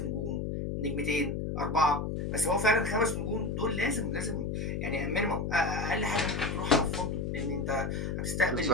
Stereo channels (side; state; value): left; noise; hum, 2 dB below the sound